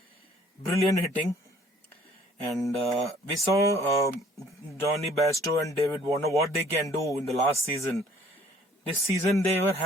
Brilliant hitting. And we saw Johnny Bairstow and David Warner what they can do in the last season. This season they were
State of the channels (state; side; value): normal; both; correlation 0.57